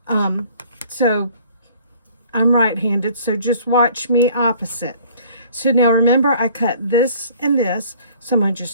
So I'm right-handed, so just watch me opposite. So now remember, I cut this and this, so I'm going to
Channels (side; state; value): both; inverted; correlation -0.54